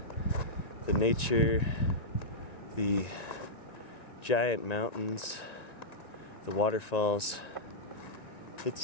the nature, the giant mountains, the waterfalls,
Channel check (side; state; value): right; late; 1.9 ms